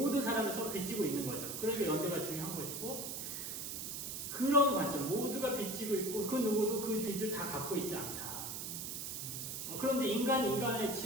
사람이 서로 빚지고 있는 거죠. 그러니까 연대가 중요한 것이고 그런 관점 모두가 빚지고 있고 그 누구도 그 빚을 다 갖고 있지 않다. 그런데 인간의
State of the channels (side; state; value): right; noise; hiss, 5 dB below the sound